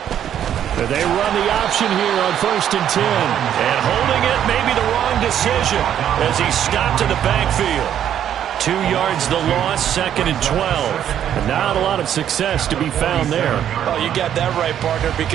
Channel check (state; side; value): quieter; left; 10.0 dB